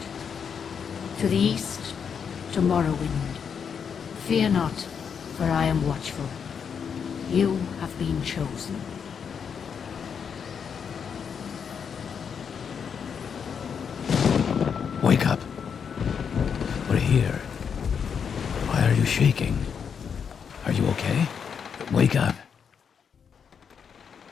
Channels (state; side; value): quieter; right; 6.9 dB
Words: To the east, to Morrowind. Fear not, for I am watchful. You have been chosen. Wake up. We're here. Why are you shaking? Are you okay? Wake up.